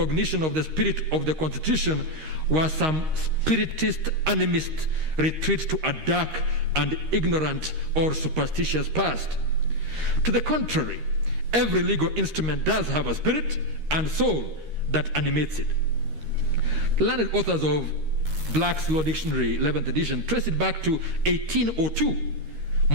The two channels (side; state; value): left; late; 13 ms